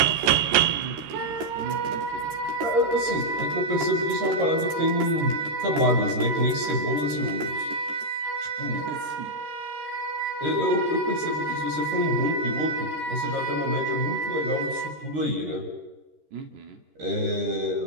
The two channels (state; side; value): late; left; 13 ms